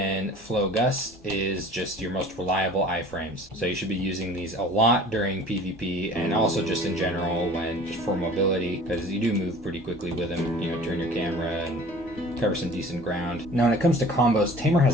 Flow Gust is just your most reliable iframes. So you should be using these a lot during PvP, and also just in general when just for mobility, because you do move pretty quickly with them. You know, turn your camera and cover some decent ground. Now when it comes to combos, Tamer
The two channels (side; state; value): both; normal; correlation 0.46